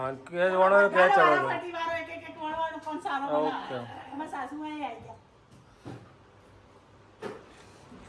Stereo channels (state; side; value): identical; both; correlation 1.00